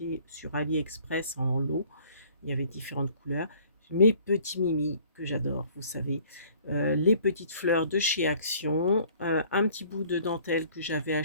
sur AliExpress en lot. Il y avait différentes couleurs. Mes petits Mimi que j'adore, vous savez. Les petites fleurs de chez Action. Un petit bout de dentelle que j'avais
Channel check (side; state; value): both; inverted; correlation -0.55